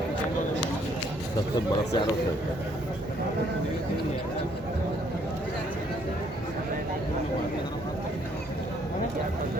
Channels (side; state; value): both; normal; correlation 0.67